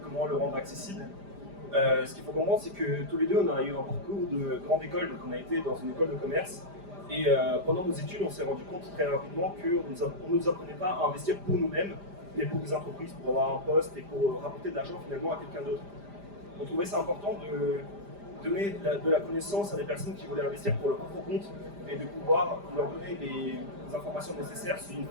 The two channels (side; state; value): left; late; 5.0 ms